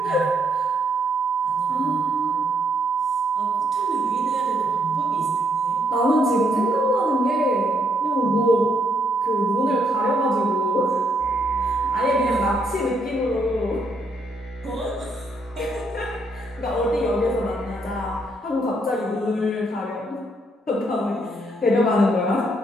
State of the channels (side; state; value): both; normal; correlation 0.73